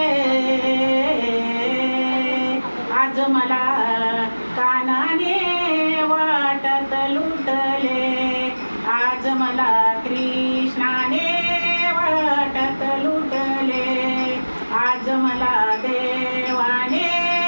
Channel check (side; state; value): both; inverted; correlation -1.00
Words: आज मला कानाने वाटत लुटले आज मला कृष्णाने वाटत लुटले आज मला देवाने